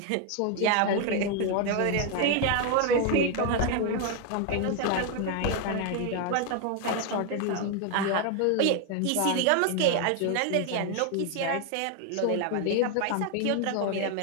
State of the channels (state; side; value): different; both; correlation 0.01